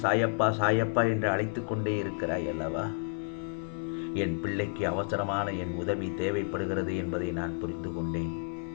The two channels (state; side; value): silent; right; 57 dB below the other